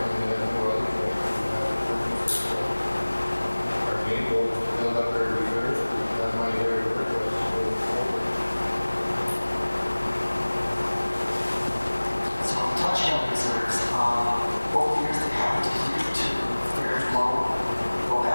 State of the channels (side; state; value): both; inverted; correlation -1.00